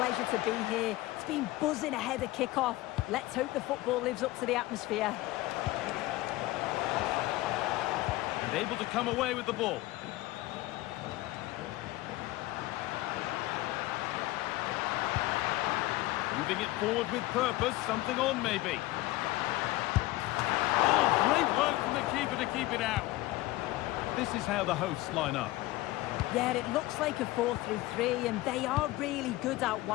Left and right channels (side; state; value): right; quieter; 18.1 dB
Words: to be here. It's been buzzing ahead of kick-off. Let's hope the football lives up to the atmosphere. And able to come away with the ball. Moving it forward with purpose, something on maybe. Oh, great work from the keeper to keep it out. This is how the hosts line up. Yeah, it looks like a 4-3-3 and they are really good out